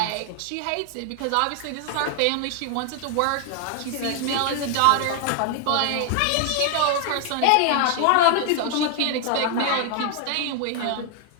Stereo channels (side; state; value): both; different; correlation 0.00